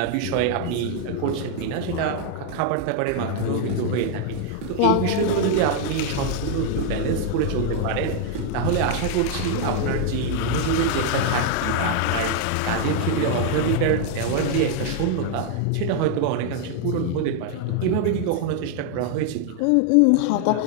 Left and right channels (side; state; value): both; different; correlation 0.00